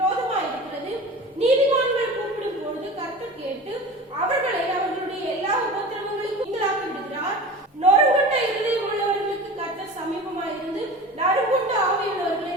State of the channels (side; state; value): both; normal; correlation 0.35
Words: நீதிமான்கள் கூப்பிடும் பொழுது கர்த்தர் கேட்டு அவர்களை அவர்களுடைய எல்லா உபத்திரவங்களுக்கும் நீங்களாக்கி விடுகிறார். நொறுங்குண்ட இருதயம் உள்ளவர்களுக்கு கர்த்தர் சமீபமாயிருந்து நறுங்குண்ட ஆவியுள்ளவர்களை